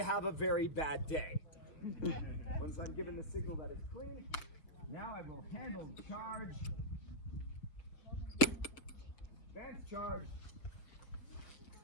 have a very bad day. Once I'm given the signal that it's clean, now I will handle charge, advance charge,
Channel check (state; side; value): late; right; 6.6 ms